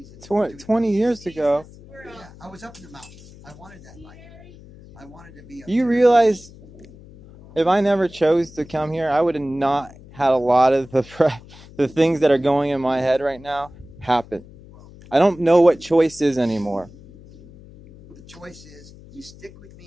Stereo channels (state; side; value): noise; left; hum, 21 dB below the sound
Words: 20 years ago? Yeah, I was up in the mountains. I wanted that life. I wanted to be up You there. realize if I never chose to come here, I would have not had a lot of the things that are going in my head right now happen. I don't know what choice is anymore. The choice is you stick with